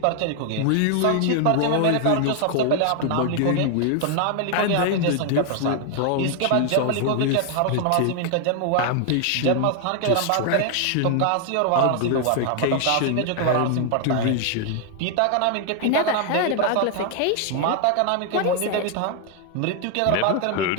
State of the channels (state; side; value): different; both; correlation 0.00